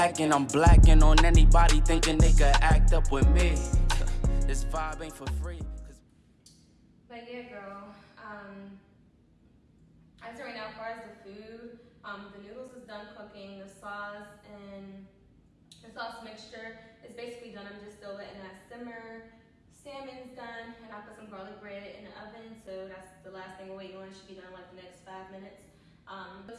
I'm blacking on anybody thinking they could act up with me. This vibe ain't for free. But yeah, girl, I'd say right now, as far as the food, the noodles is done cooking, the sauce and the sauce mixture is basically done. I'm just still letting that simmer. Salmon's done, and I put some garlic bread in the oven, so that's the last thing we're waiting on. It should be done in like the next 5 minutes.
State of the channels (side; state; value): both; identical; correlation 1.00